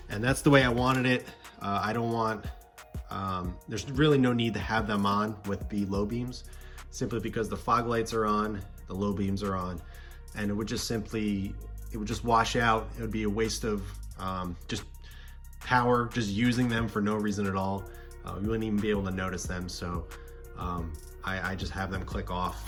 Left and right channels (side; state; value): both; identical; correlation 1.00